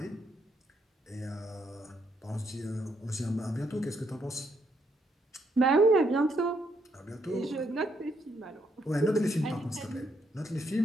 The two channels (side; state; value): both; normal; correlation 0.75